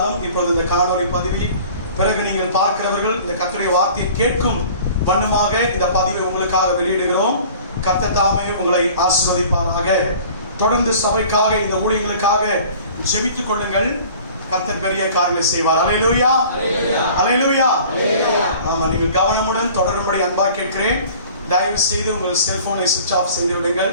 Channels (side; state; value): both; inverted; correlation -0.47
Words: இப்பொழுது இந்த காணொலி பதிவை பிறகு நீங்கள் பார்க்கிறவர்கள் இந்த கர்த்தருடைய வார்த்தையை கேட்கும் வண்ணமாக இந்த பதிவை உங்களுக்காக வெளியிடுகிறோம். கர்த்தர் தாமே உங்களை ஆசீர்வதிப்பாராக. தொடர்ந்து சபைக்காக இந்த ஊழியங்களுக்காக ஜெபித்துக் கொள்ளுங்கள். கர்த்தர் பெரிய காரியங்களை செய்வார். அல்லேலூயா, அல்லேலூயா. ஆமா, நீங்கள் கவனமுடன் தொடரும்படி அன்பாக கேட்கிறேன். தயவு செய்து உங்கள் செல்போனை சுவிட்ச் ஆஃப் செய்து விடுங்கள்.